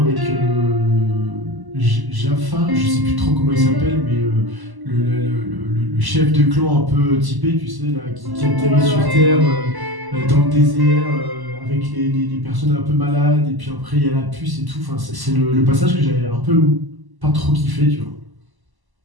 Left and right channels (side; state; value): left; late; 1.0 ms